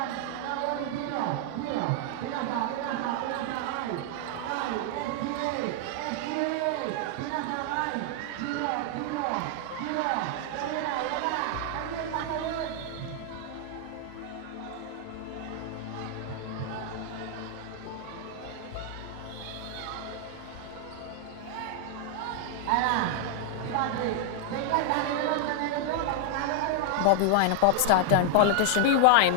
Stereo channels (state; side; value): different; both; correlation 0.00